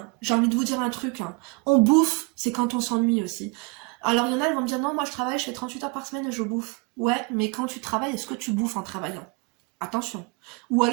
j'ai envie de vous dire un truc. Hein. On bouffe, c'est quand on s'ennuie aussi. Alors, il y en a, elles vont me dire, non, moi je travaille, je fais 38 heures par semaine et je bouffe. Ouais, mais quand tu travailles, est-ce que tu bouffes en travaillant ? Attention. Ou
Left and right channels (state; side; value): quieter; left; 28.7 dB